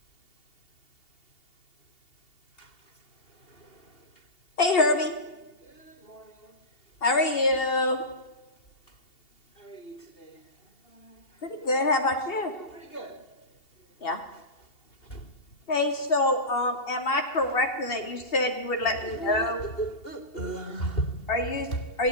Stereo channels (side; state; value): right; late; 2.7 ms